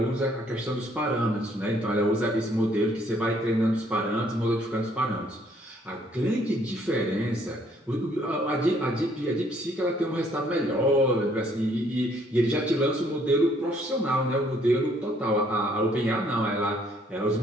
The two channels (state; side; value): normal; both; correlation 0.65